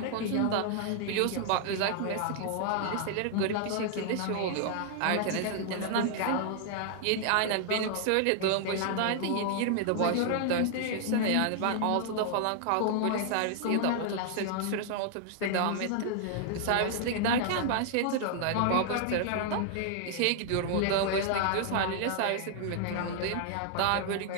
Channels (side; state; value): both; different; correlation 0.00